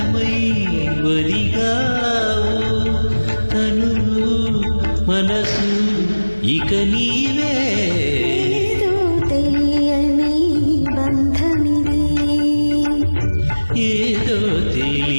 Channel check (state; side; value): inverted; both; correlation -1.00